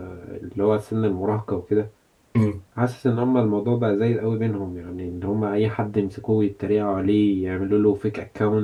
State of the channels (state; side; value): identical; both; correlation 1.00